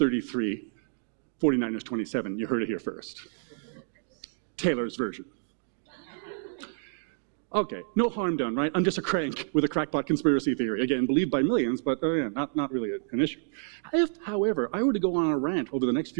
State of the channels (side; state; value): left; silent; digital silence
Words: 49ers 27, you heard it here first. Taylor's version. Okay, no harm done, right? I'm just a crank with a crackpot conspiracy theory. Again, believed by millions, but yeah, not really an issue. If, however, I were to go on a rant over the next